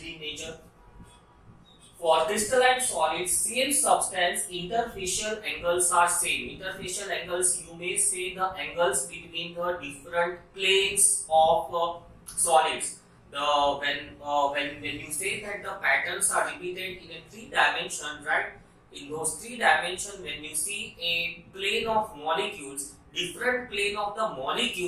in nature. For crystalline solids, same substance, interfacial angles are same. Interfacial angles, you may say the angles between the different planes of solids. When you say that the patterns are repeated in a 3-dimension, right? In those 3 dimensions, when you see a plane of molecules, different plane of the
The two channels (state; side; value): identical; both; correlation 1.00